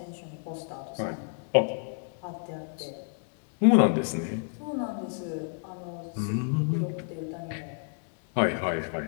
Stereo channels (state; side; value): silent; right; 58 dB below the other